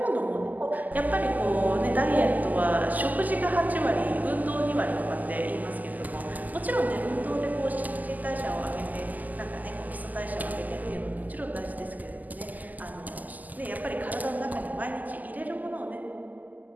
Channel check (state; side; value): late; left; 0.081 ms